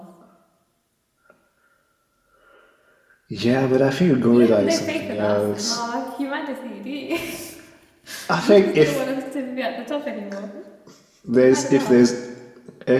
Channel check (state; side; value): identical; both; correlation 1.00